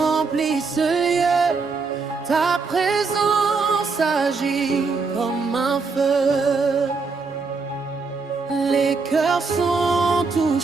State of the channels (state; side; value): quieter; left; 4.5 dB